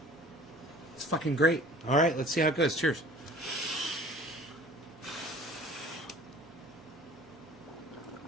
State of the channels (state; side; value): normal; both; correlation 0.46